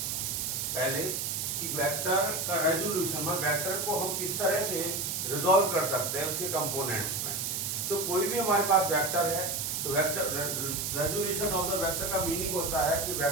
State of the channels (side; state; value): right; noise; hiss, 1 dB below the sound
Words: पहले कि वेक्टर का रेजोल्यूशन में वेक्टर को हम किस तरह से रिजॉल्व कर सकते हैं उसके कंपोनेंट्स में। तो कोई भी हमारे पास वेक्टर है तो vector resolution of the vector का मीनिंग होता है कि